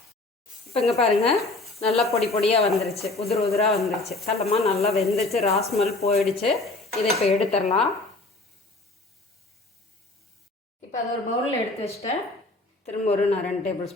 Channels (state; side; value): quieter; right; 3.1 dB